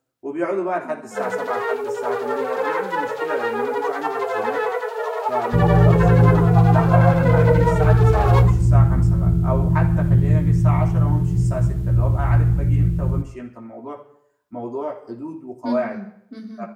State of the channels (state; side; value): identical; both; correlation 1.00